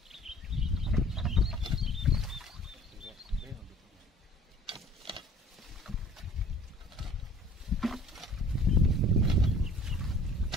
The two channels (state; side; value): normal; both; correlation 0.52